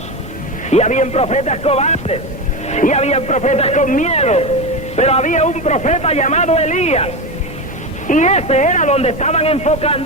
Y habían profetas cobardes, y habían profetas con miedo, pero había un profeta llamado Elías, y ese era donde estaban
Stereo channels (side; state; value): both; normal; correlation 0.19